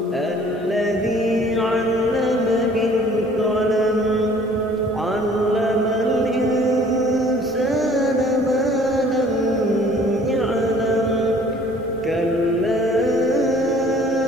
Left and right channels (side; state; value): both; normal; correlation 0.53